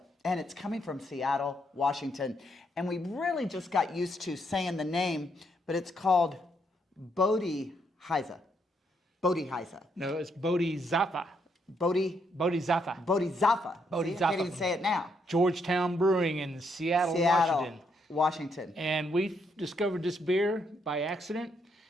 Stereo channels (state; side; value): normal; both; correlation 0.75